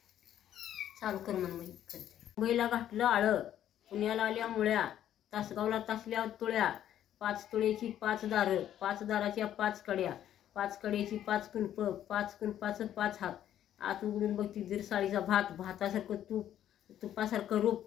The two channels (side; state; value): right; quieter; 11.1 dB